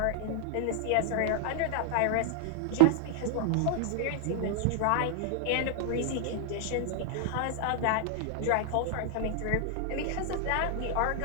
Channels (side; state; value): both; different; correlation 0.00